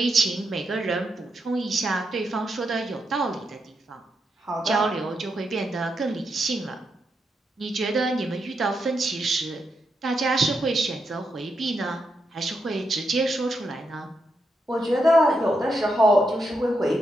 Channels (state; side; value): normal; both; correlation 0.83